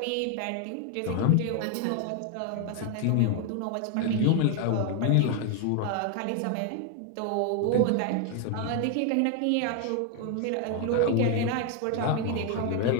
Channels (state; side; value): different; both; correlation 0.01